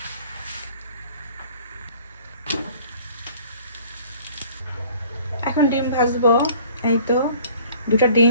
এখন ডিম ভাজবো। এই তো 2টা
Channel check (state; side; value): inverted; both; correlation -0.52